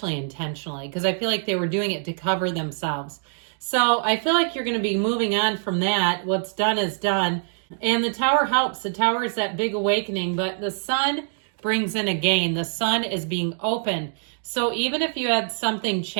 intentionally, because I feel like they were doing it to cover themselves. So I feel like you're going to be moving on from that. What's done is done. And the Tower helps. The Tower is that big awakening, but the Sun brings in a gain. The Sun is being open. So even if you had something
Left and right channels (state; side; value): silent; left; digital silence